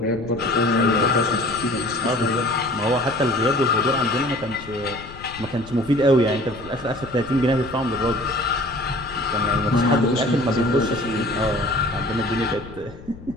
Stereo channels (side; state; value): left; noise; rumble, 17 dB below the sound